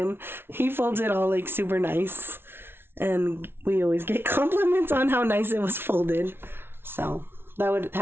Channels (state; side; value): late; left; 0.11 ms